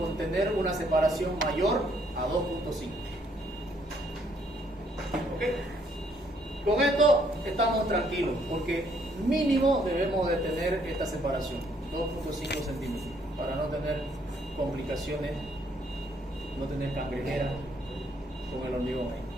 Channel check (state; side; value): normal; both; correlation 0.68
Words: tener una separación mayor a 2.5. ¿Ok? Con esto estamos tranquilos, porque mínimo debemos de tener esta separación, 2.5 centímetros, para no tener complicaciones, no tener cangrejera con el hormigón ahí.